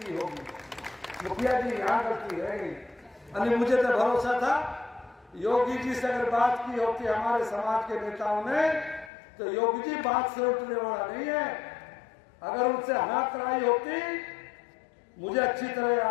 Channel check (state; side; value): drops out; right; at 9.1 s